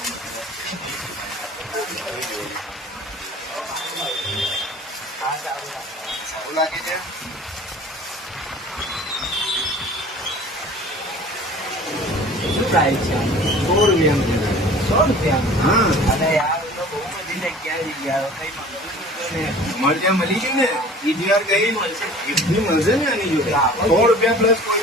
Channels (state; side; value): normal; both; correlation 0.46